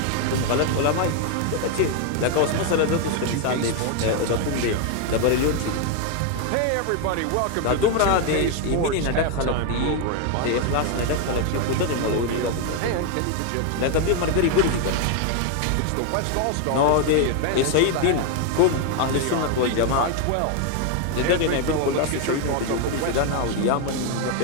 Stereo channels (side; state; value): both; different; correlation 0.01